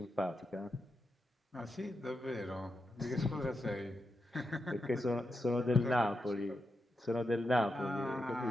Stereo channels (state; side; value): normal; both; correlation 0.87